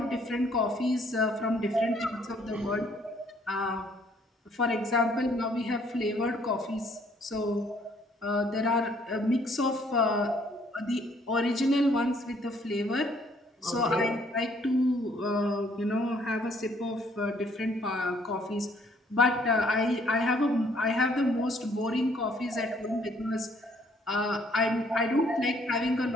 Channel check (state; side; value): normal; both; correlation 0.63